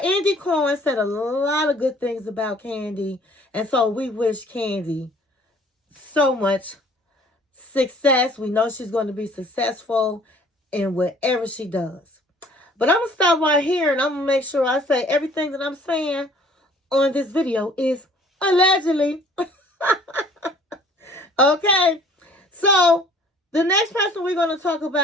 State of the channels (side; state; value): both; normal; correlation 0.54